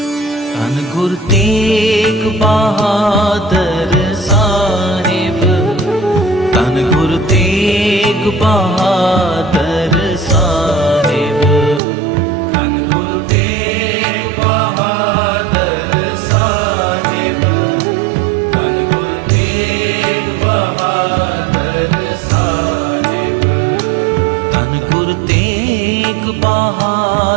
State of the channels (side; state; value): left; drops out; at 11.8 s